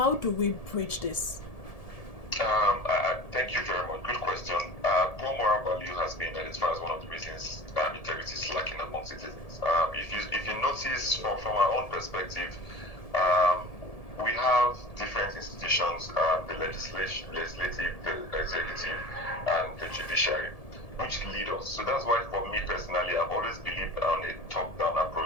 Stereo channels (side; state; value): right; late; 1.7 ms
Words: do we bridge this? Thank you very much. Good question. Poor moral value has been identified as one of the reasons integrity is lacking among citizens. If you notice from our own perspective, we have different institutions, the legislative, the executive, and the judiciary, which lead us. So that's why, for me personally, I've always believed on a top-down